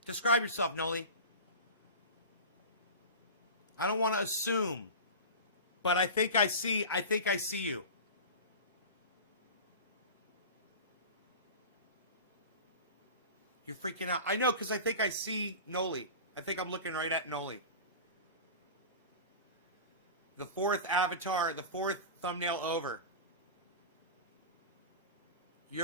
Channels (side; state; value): both; inverted; correlation -0.31